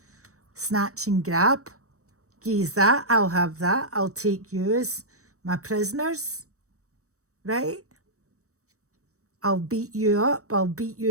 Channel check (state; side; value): late; left; 0.65 ms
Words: snatch and grab. Geez, that, I'll have that. I'll take you as my prisoners, right? I'll beat you up. I'll beat